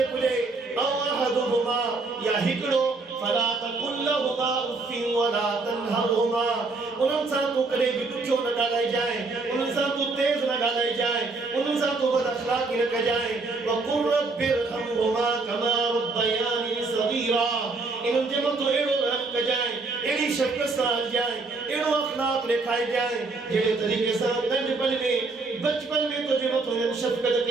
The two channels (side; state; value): left; quieter; 3.7 dB